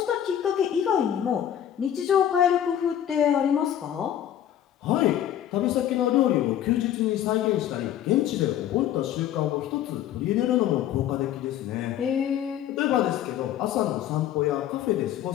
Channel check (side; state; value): right; quieter; 10.8 dB